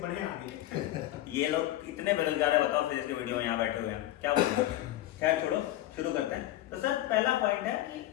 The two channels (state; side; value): quieter; right; 14.5 dB